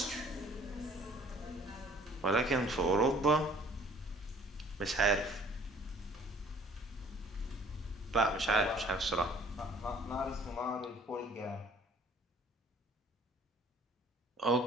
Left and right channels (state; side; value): normal; both; correlation 0.55